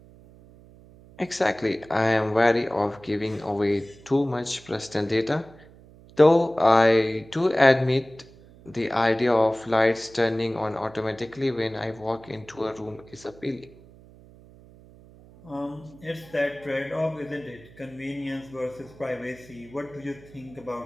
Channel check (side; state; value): right; noise; hum, 23 dB below the sound